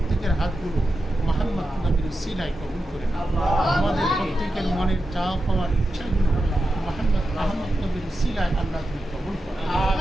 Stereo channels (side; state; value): both; normal; correlation 0.90